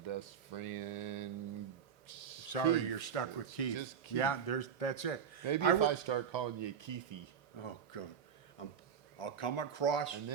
best friend. Sorry, Keith. you're stuck with Keith. Just Keith. Yeah, that's it. Maybe I if wo- I start calling you Keithy, Oh, good. I'm, I'll come across. and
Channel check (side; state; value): left; quieter; 7.6 dB